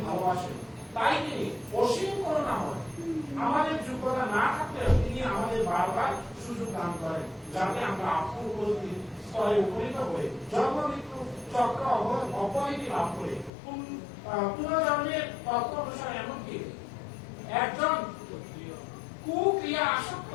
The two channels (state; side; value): drops out; right; at 13.5 s